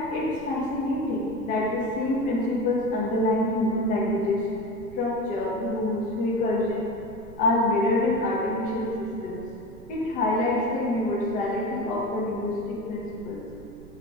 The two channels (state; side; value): noise; right; rumble, 18 dB below the sound